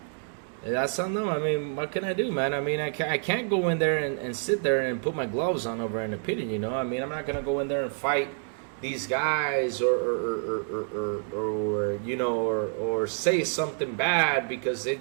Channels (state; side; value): silent; left; 59 dB below the other